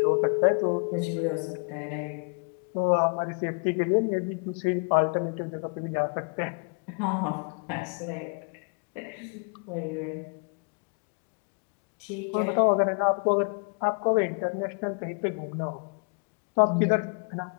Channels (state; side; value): quieter; right; 39.4 dB